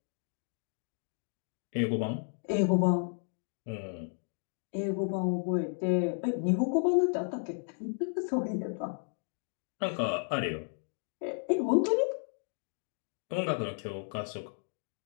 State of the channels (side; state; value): right; silent; 56 dB below the other